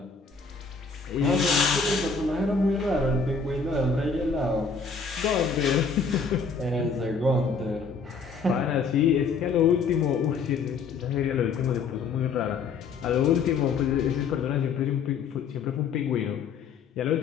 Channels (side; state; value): right; quieter; 5.1 dB